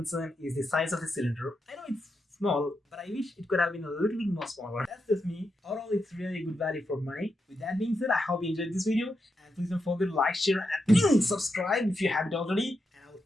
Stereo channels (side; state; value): both; normal; correlation 0.85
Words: is the size of the cylinder. I know it's small, but I wish it could have been a little bit more smaller. That's just me. Overall, it's really a good value for money. With that being said, I hope you enjoyed this video, and please don't forget to like, share, and subscribe if you haven't already. And I will